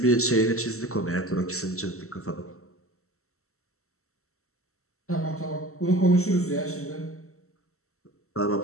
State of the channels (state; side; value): late; right; 0.63 ms